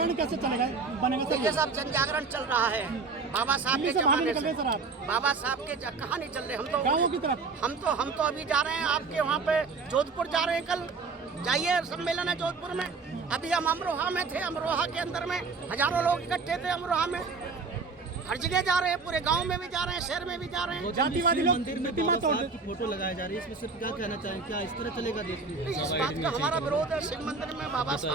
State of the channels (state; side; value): quieter; left; 4.4 dB